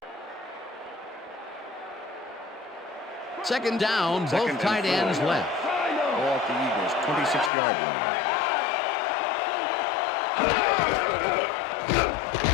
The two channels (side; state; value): right; drops out; at 7.5 s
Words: Second down, both tight ends left. Ball at the Eagles, 26-yard line.